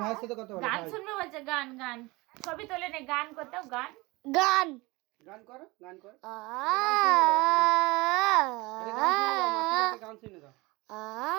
ভাইয়ের সাথে কথা বলো। গান শুনবে বলছে, গান গান ছবি তোলে নে, গান করতেও গান গান গান করো, গান করো, গান শুনে দাও।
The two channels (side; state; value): left; quieter; 23.2 dB